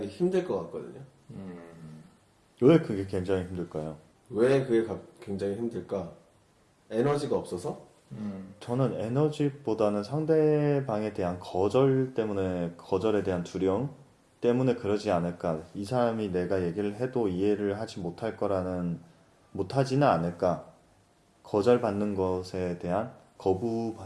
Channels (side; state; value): both; identical; correlation 1.00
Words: 힘들 것 같거든요. 왜 그게 굉장히 힘들까요? 왜 그게 굉장히 힘들까? 에너지가 없어서? 저는 에너지보다는 상대방에 대한 거절에 대한 두려움 때문에 그러지 않을까. 이 사람이 내가 얘기를 해도 이해를 하지 못하지는 않을까. 거절받는 것에 대한,